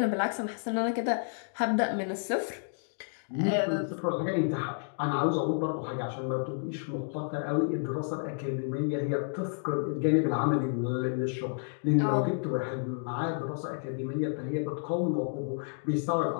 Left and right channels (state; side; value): silent; right; digital silence